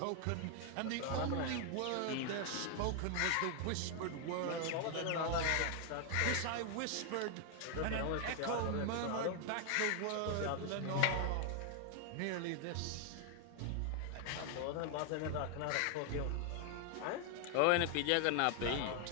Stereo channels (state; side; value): different; both; correlation 0.00